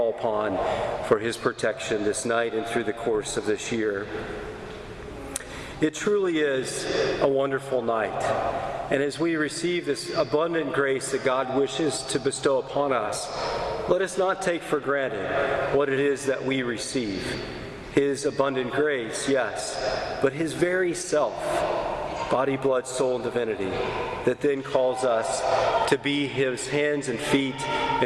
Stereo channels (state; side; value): identical; both; correlation 1.00